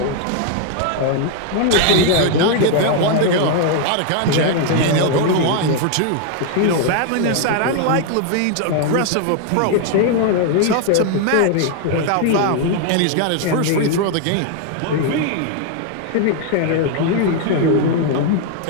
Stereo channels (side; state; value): both; different; correlation 0.00